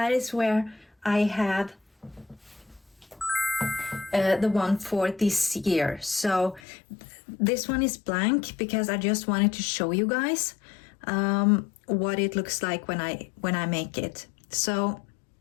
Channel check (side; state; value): right; drops out; at 6.6 s